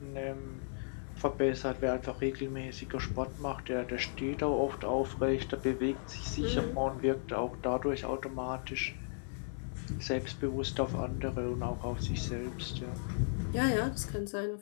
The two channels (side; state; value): right; silent; 54 dB below the other